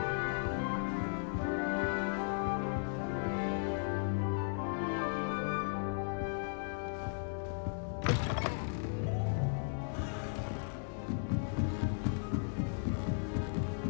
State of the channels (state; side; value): silent; right; digital silence